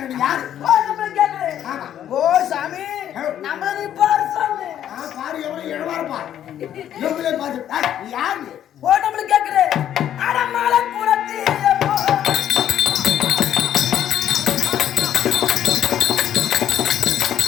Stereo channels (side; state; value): right; quieter; 10.7 dB